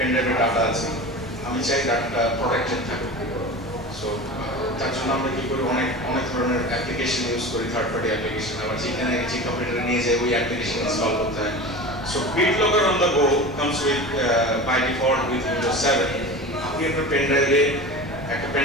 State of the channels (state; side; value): normal; both; correlation 0.32